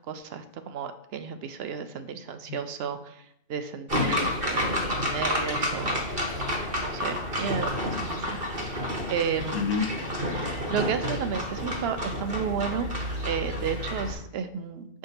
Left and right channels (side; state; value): left; late; 2.6 ms